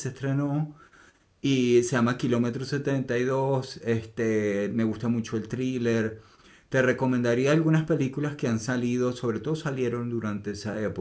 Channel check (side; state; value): both; identical; correlation 1.00